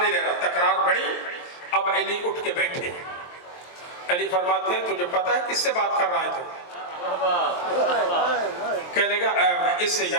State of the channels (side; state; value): right; late; 23 ms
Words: لے رہا، تکرار بڑھی. اب علی اٹھ کے بیٹھے. علی فرماتے ہیں تجھے پتہ ہے کس سے بات کر رہا ہے تو؟ کہنے لگا اس سے